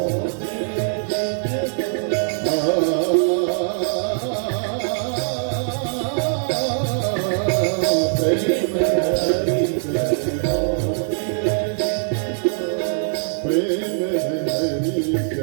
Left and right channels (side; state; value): left; silent; digital silence